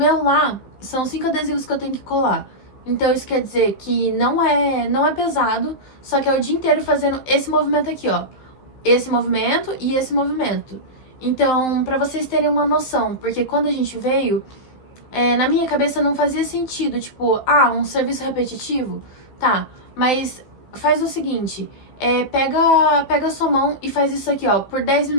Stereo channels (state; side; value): late; right; 15 ms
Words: lá, são 5 adesivos que eu tenho que colar. Então, isso quer dizer que não é pesado, só que é o dia inteiro fazendo esse movimento aqui, ó. Esse movimento e esse movimento. Então, para vocês terem uma noção, porque quando a gente veio, na minha cabeça não fazia sentido, tipo, um serviço repetitivo, tá, mas faz o seguinte, pega a sua mão e faz isso aqui, ó, por 10